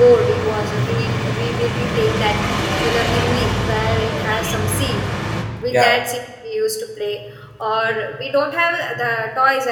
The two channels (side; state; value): both; identical; correlation 1.00